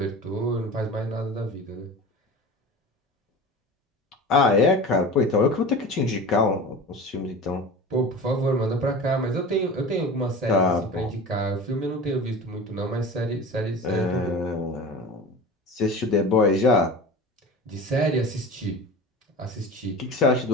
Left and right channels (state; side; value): normal; both; correlation 0.34